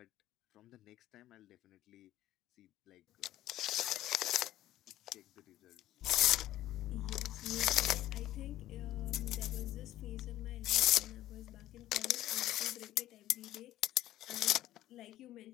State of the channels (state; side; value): quieter; right; 14.1 dB